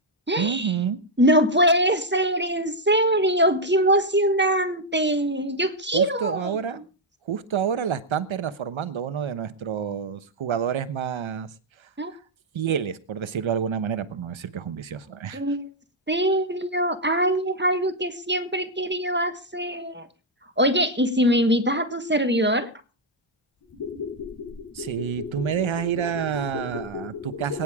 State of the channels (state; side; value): normal; both; correlation -0.01